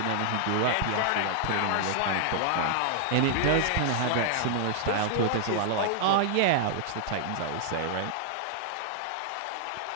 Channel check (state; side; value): different; both; correlation -0.01